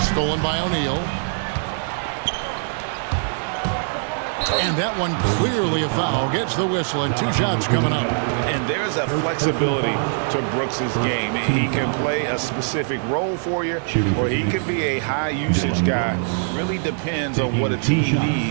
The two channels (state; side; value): silent; left; digital silence